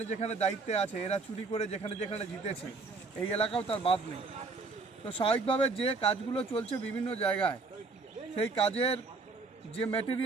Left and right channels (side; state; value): left; quieter; 4.0 dB